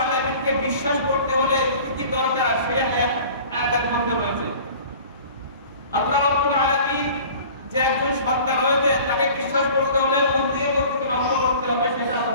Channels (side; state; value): both; inverted; correlation -0.45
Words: আলামিনকে বিশ্বাস করতে হলে কি কি দরকার সেই আয়াতের মধ্যে রয়েছে। আল্লাহ রাব্বুল আলামিন যে একজন সত্তা রয়েছে তাকে বিশ্বাস করতে হলে কোন দিকে লক্ষ্য করতে হবে সেটা আল্লাহ